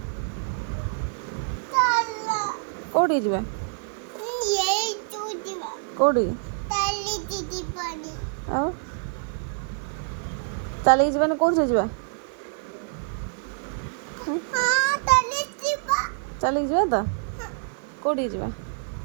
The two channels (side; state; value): left; silent; 61 dB below the other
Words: କୋଉଠିକି ଯିବା? କୋଉଠି? ଆଉ ଚାଲିକି ଯିବାନି କୋଉଥିରେ ଯିବା? ଚାଲିକି ଯିବା ତ? କୋଉଠିକି ଯିବା?